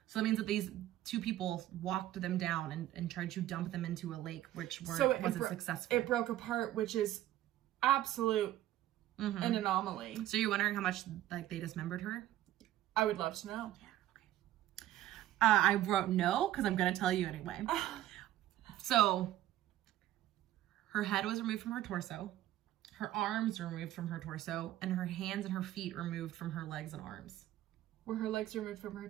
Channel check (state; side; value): quieter; left; 13.8 dB